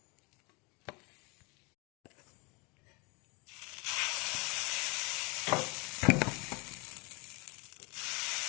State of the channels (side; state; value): right; quieter; 29.2 dB